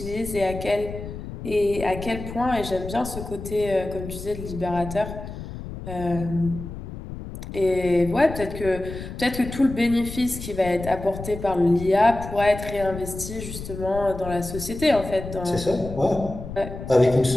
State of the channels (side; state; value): left; noise; rumble, 10 dB below the sound